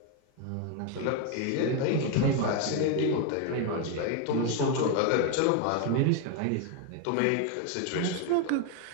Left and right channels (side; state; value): both; different; correlation 0.01